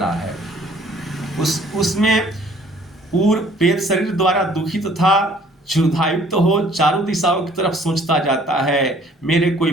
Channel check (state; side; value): normal; both; correlation 0.57